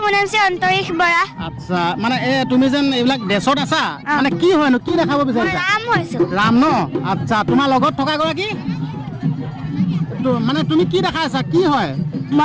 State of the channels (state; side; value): identical; both; correlation 1.00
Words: মোৰ নাম শ্ৰী অন্তৰীশ বৰা আচ্ছা মানে তুমি যেন এইবিলাক ড্ৰেছত আছা মানে কি হয়নো কি দেখাব মই বিচাৰিছা ৰাম হৈছোঁ ৰাম ন আচ্ছা তোমাৰ লগত থকা গৰাকী মানে তুমি কি দেখাইছা কি হয়